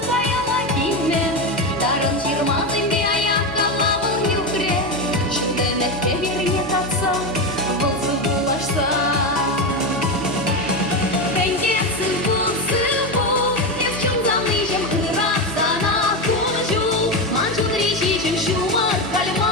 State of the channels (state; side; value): normal; both; correlation 0.15